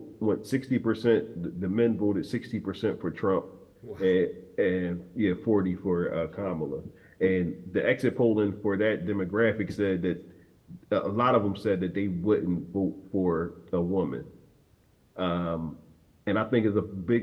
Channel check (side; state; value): both; identical; correlation 1.00